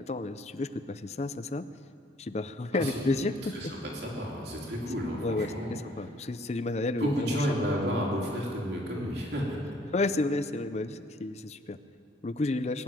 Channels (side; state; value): both; normal; correlation 0.61